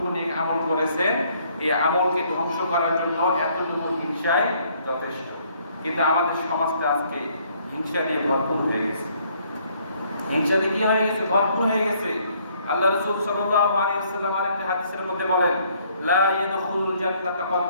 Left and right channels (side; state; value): both; inverted; correlation -0.65